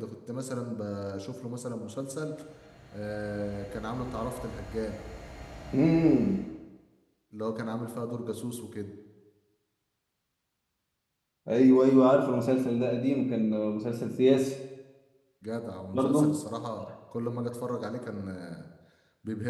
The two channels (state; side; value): identical; both; correlation 1.00